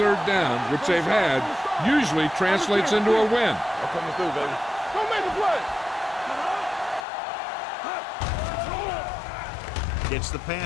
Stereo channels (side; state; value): right; drops out; at 7.1 s